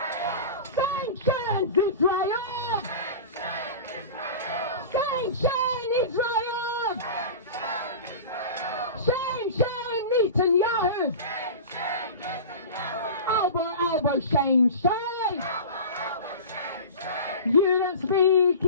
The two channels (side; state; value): both; inverted; correlation -0.33